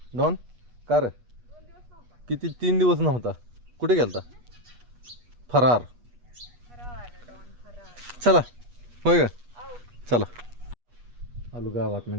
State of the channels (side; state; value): left; late; 8.3 ms